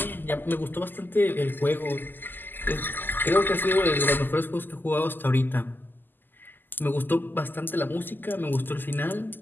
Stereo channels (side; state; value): right; late; 0.091 ms